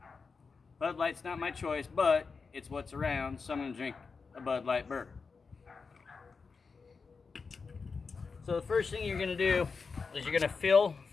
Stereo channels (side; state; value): right; quieter; 4.9 dB